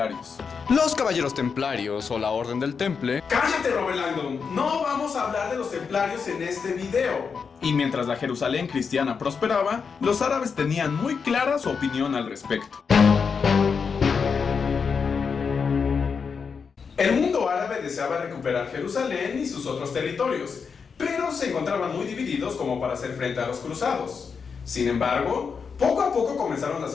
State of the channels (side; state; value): right; quieter; 5.8 dB